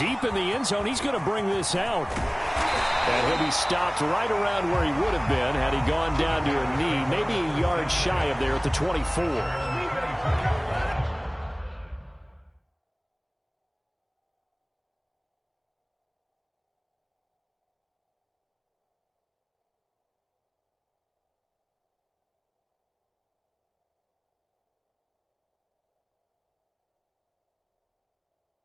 in the end zone, he's going to bring this out. And he'll be stopped right around where he would have been had he gone down to a knee, maybe a yard shy of there at the 24.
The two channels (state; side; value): identical; both; correlation 1.00